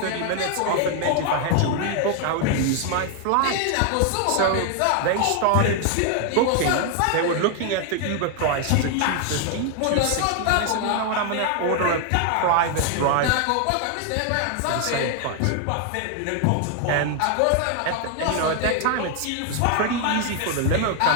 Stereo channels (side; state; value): both; different; correlation 0.00